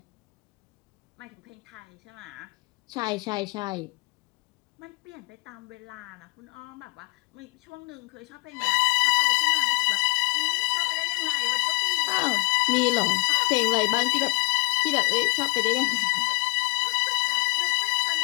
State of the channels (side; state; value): right; quieter; 28.9 dB